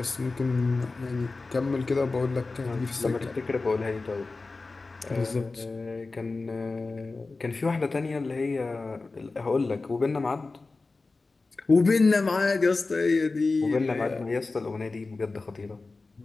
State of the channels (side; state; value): right; quieter; 3.7 dB